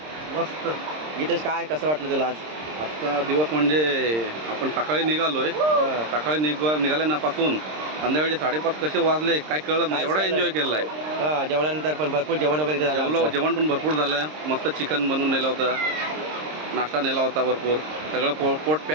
मस्त. गीतेश, काय कसं वाटलं तुला आज? आजचा दिवस म्हणजे आपण सकाळी निघालोय. सकाळी निघाल्यापासून संध्याकाळचे 5:30 कसे वाजले काय कळलं नाही. एवढा एन्जॉय केलाय. जेवणानंतर पण भरपूर जेवण वगैरे इथे झालं आमचं. जेवण पण भरपूर झालं. मस्त चिकन बनवून नेलं होतं, नाश्ता नेला होता भरपूर. सगळं पोट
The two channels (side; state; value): left; late; 26 ms